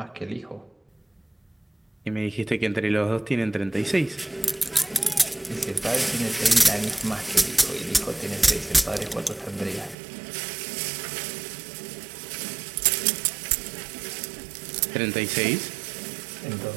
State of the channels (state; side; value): drops out; left; at 10.0 s